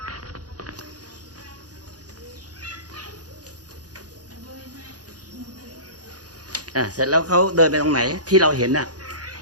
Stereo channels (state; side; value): late; left; 0.68 ms